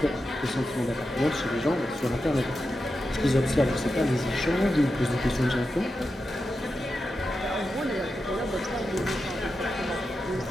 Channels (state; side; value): normal; both; correlation 0.89